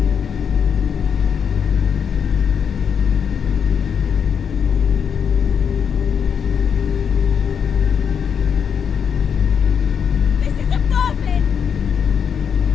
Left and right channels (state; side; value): quieter; right; 7.3 dB